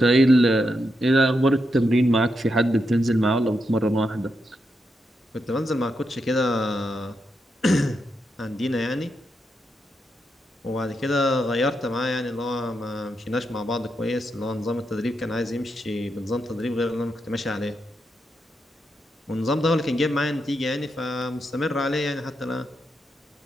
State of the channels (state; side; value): normal; both; correlation 0.84